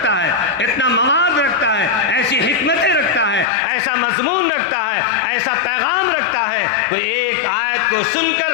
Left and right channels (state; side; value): drops out; right; at 3.5 s